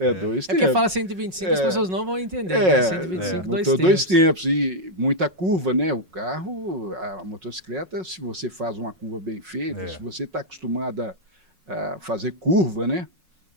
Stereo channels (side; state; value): left; late; 5.4 ms